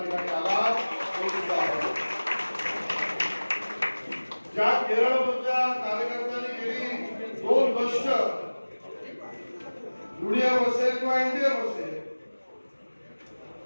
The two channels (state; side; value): inverted; both; correlation -1.00